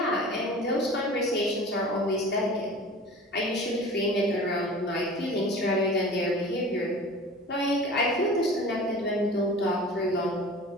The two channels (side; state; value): both; normal; correlation 0.39